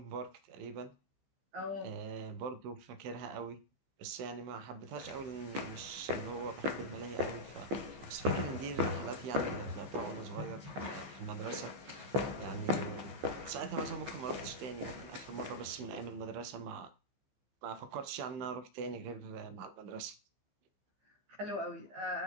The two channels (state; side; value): late; left; 15 ms